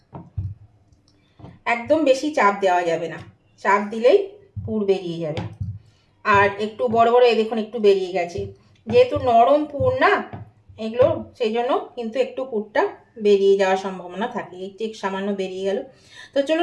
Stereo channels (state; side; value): identical; both; correlation 1.00